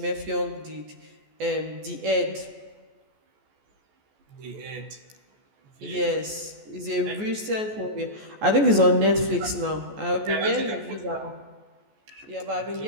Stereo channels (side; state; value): left; late; 14 ms